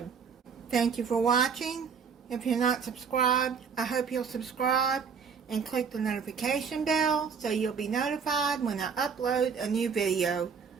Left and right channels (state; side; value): quieter; left; 6.2 dB